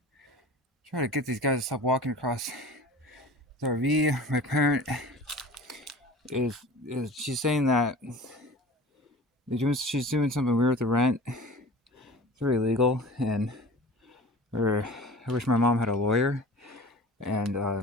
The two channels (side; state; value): both; normal; correlation 0.39